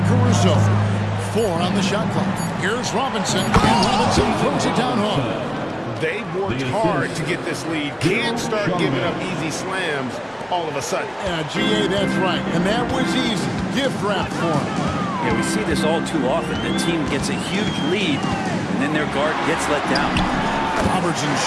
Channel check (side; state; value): both; identical; correlation 1.00